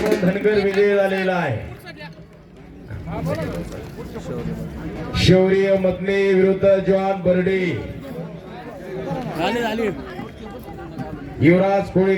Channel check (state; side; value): identical; both; correlation 1.00